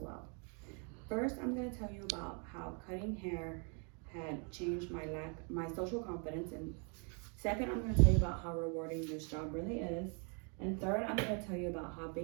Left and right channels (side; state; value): left; quieter; 37.3 dB